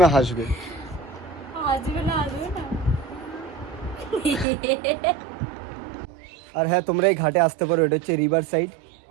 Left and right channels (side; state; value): left; drops out; at 4.5 s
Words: হাসবে। আর হ্যাঁ, তোমরা এই ঘাটে আসতে পারো, এটা হচ্ছে রিভার সাইড,